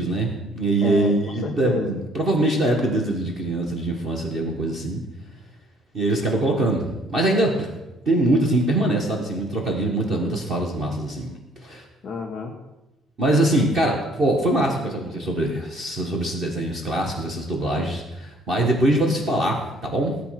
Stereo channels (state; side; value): normal; both; correlation 0.59